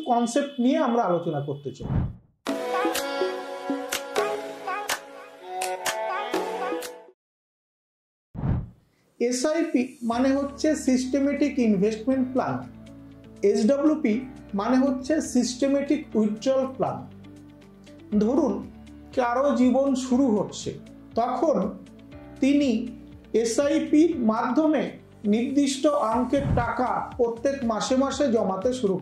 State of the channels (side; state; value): both; identical; correlation 1.00